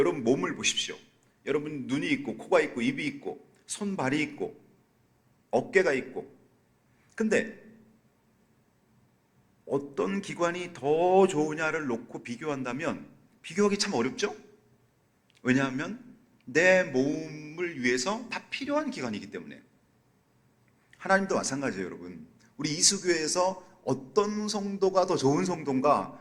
몸을 보십시오. 여러분 눈이 있고 코가 있고 입이 있고 손발이 있고 어깨가 있고, 근데 어떤 기관이 더 좋으냐를 놓고 비교한다면 비교하기 참 어렵죠? 왜냐하면 내 몸을 위해서 다 필요한 기관이기 때문에. 하나님도 마찬가지예요, 여러분. 우리 이수교회에서 어떤 성도가 더 좋은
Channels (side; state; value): both; identical; correlation 1.00